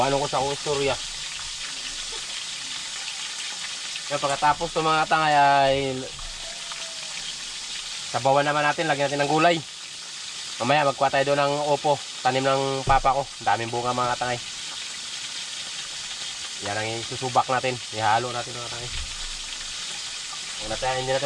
ko sa akong istorya. Kaya pagkatapos itong mga tangay ay sabawan naman natin. Lagyan natin ng gulay. Mamaya magkuha tayo doon ng opo, tanim ng papa ko. Daming bunga mga tangay. Yan ang isusubak natin. Ihalo natin mga tangay. Hindi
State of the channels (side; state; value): both; identical; correlation 1.00